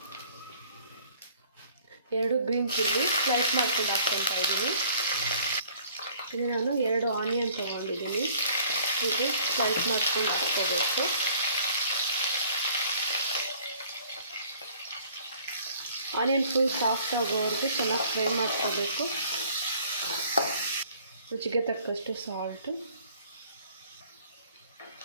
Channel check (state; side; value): inverted; both; correlation -0.56